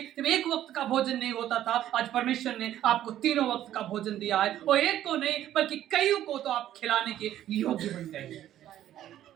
जब एक वक्त का भोजन नहीं होता था, आज परमेश्वर ने आपको 3 वक्त का भोजन दिया है। और एक को नहीं बल्कि कईयों को तो आप खिलाने के योग्य बन गए।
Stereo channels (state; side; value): quieter; left; 12.1 dB